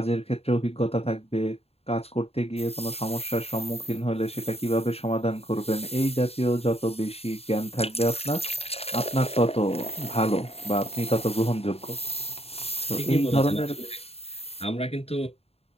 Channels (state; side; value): late; right; 0.29 ms